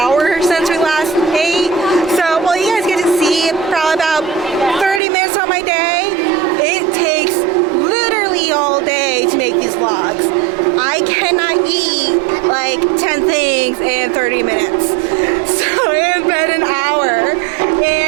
since we last ate. So, well, you guys get to see probably about 30 minutes on my day. It takes literally all day to make these vlogs. I cannot eat like 10 things in 30 minutes. So it has been an hour.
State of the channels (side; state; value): left; drops out; at 5.0 s